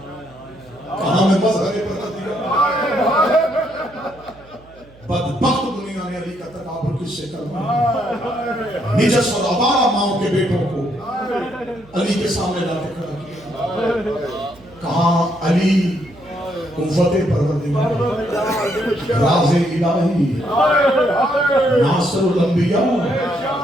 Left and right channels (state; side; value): noise; right; hum, 25 dB below the sound